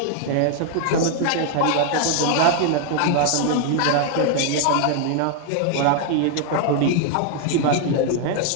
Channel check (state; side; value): different; both; correlation 0.00